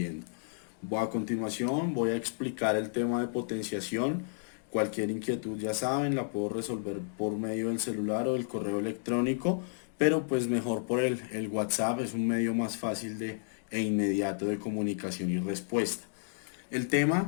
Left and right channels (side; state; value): right; silent; digital silence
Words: A continuación voy a explicar el tema de potenciación. Cualquier inquietud ya saben, la puedo resolver por medio del celular o del correo electrónico, pero pues mejor por el WhatsApp, es un medio más fácil e inmediato de comunicación y respuesta. El